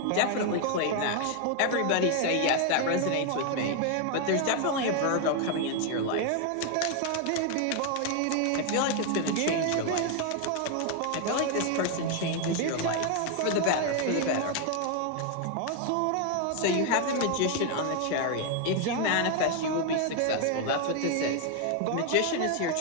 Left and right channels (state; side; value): different; both; correlation 0.01